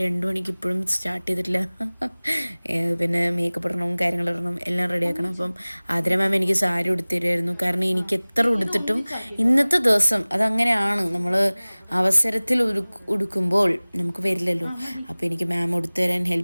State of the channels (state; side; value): inverted; both; correlation -1.00